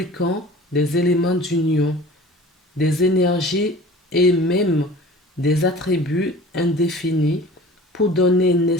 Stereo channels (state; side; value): normal; both; correlation 0.43